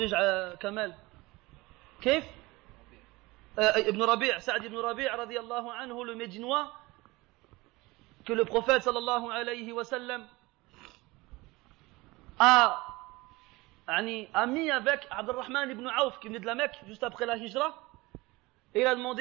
Kamal. Kif? Ibn Rabi', Sa'd ibn Rabi' radiyallahu anhu, le Médinois, que le prophète sallallahu alayhi wa sallam a mis avec Abdurrahman ibn Auf qui venait de la Mecque juste après la Hijra, et il a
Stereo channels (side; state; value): left; quieter; 21.9 dB